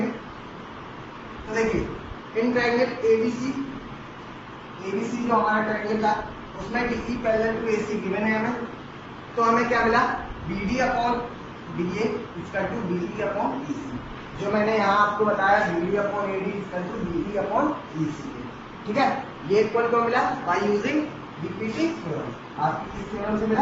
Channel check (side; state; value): both; identical; correlation 1.00